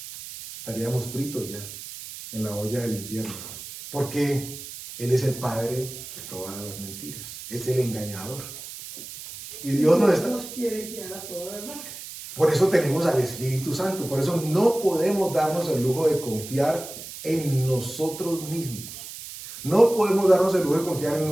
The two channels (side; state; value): right; noise; hiss, 12 dB below the sound